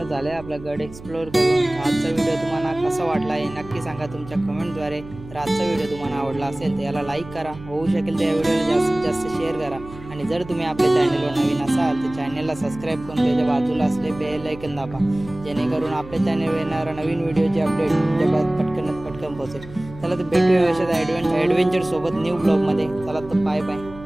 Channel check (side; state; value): right; noise; hum, 17 dB below the sound